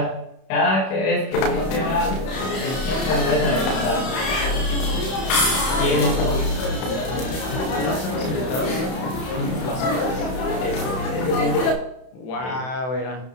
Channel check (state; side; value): late; right; 31 ms